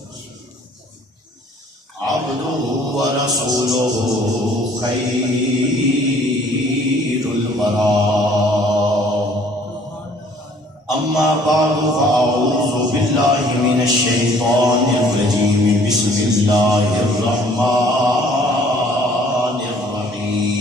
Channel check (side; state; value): both; normal; correlation 0.57